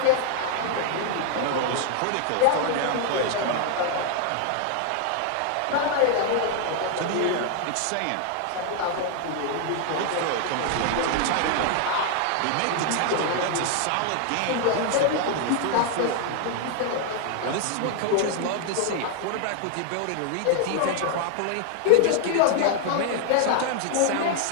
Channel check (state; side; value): different; both; correlation 0.00